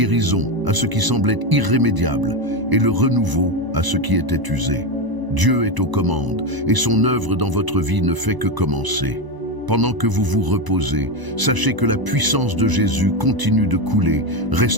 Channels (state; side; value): late; left; 1.0 ms